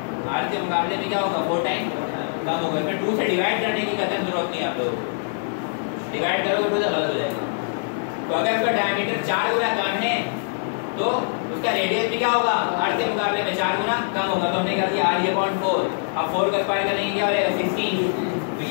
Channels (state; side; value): silent; right; digital silence